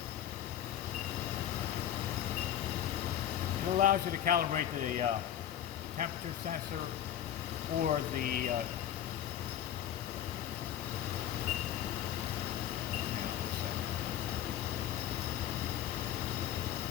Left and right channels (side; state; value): right; quieter; 11.0 dB